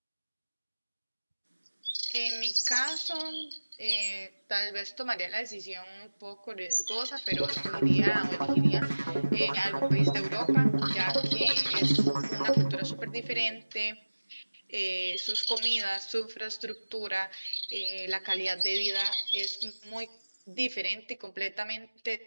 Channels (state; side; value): inverted; both; correlation -1.00